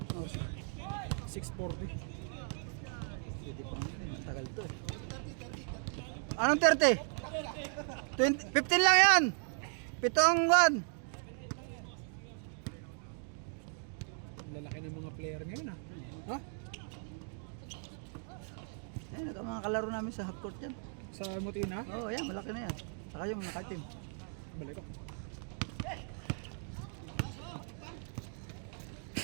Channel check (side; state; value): left; silent; 53 dB below the other